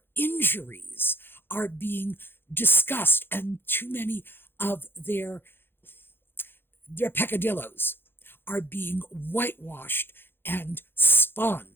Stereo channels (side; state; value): right; late; 0.10 ms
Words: injuries are being discussed, and too many of their peccadillos are being whitewashed and